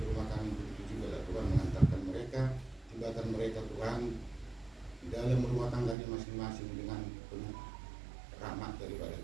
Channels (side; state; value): left; drops out; at 6.0 s